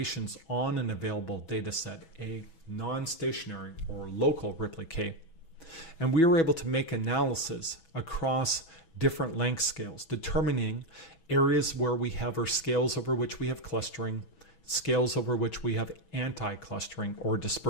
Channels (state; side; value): late; right; 6.1 ms